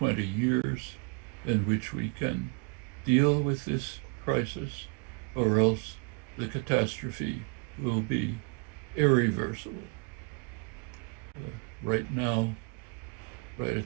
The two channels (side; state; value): left; quieter; 32.0 dB